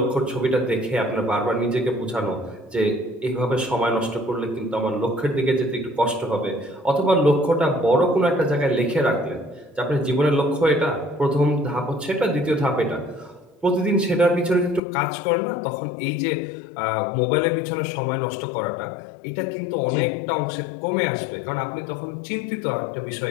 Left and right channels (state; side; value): drops out; right; at 14.8 s